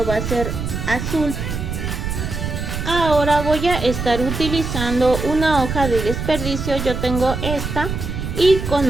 va a ser azul. Ahora voy a estar utilizando una hoja de desperdicio. Yo tengo esta y con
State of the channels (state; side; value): noise; right; rumble, 4 dB below the sound